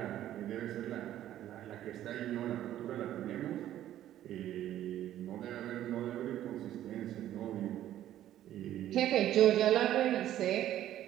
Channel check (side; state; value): left; quieter; 12.4 dB